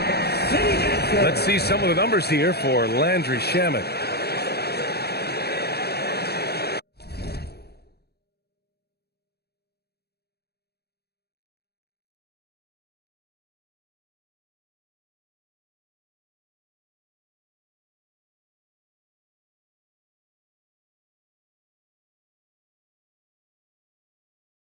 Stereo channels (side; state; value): right; late; 0.47 ms